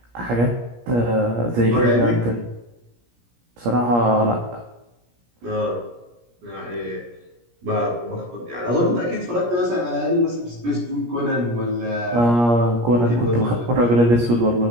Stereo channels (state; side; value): late; left; 17 ms